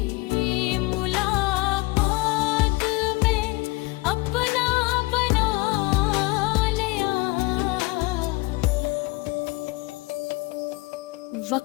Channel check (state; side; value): quieter; right; 23.4 dB